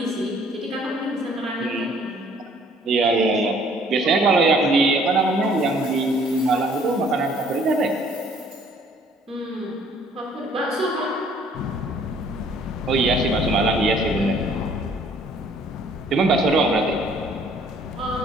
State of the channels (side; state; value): both; normal; correlation 0.59